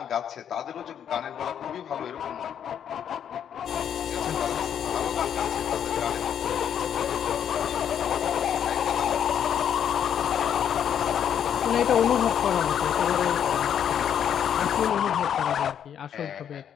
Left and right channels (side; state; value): right; quieter; 8.9 dB